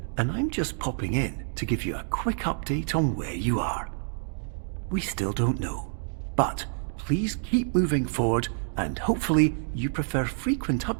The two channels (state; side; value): silent; left; digital silence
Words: and I'm just popping in to give you a quick update on where you are. We still don't know, but please keep moving forward, and hopefully you prefer frequent